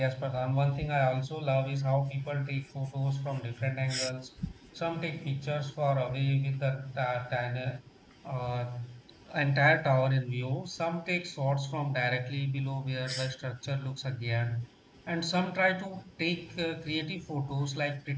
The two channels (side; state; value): both; identical; correlation 1.00